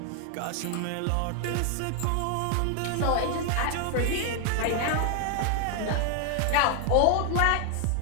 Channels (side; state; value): both; different; correlation 0.00